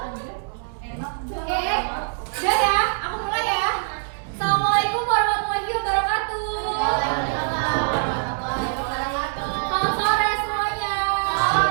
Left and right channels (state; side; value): silent; left; digital silence